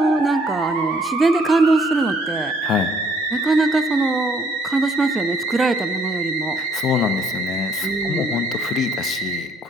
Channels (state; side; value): normal; both; correlation 0.64